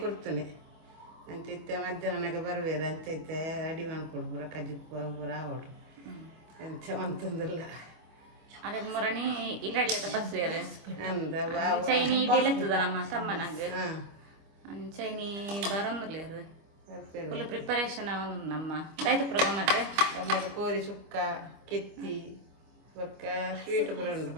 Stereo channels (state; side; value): late; left; 25 ms